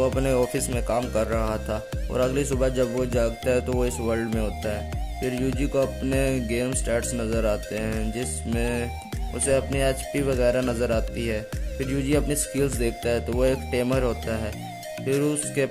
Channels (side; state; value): both; identical; correlation 1.00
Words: अपने ऑफिस में काम कर रहा था और अगली सुबह जब वो जागता है तो वो इस वर्ल्ड में होता है। फिर यूजी को अपने गेम स्टैट्स नज़र आते हैं जिसमें उसे अपनी एचपी वगैरह नज़र आती है। फिर यूजी अपनी स्किल्स देखता है तो वो एक टेमर होता है। फिर उसके